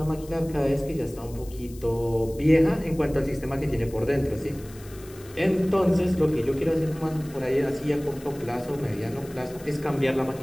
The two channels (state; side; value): noise; left; hiss, 21 dB below the sound